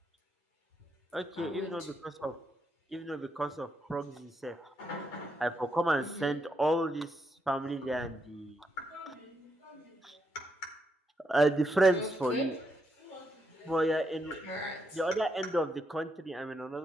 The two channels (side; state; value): both; normal; correlation 0.80